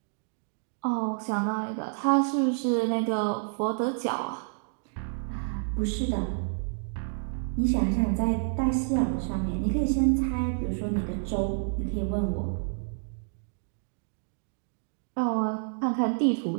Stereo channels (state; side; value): silent; left; digital silence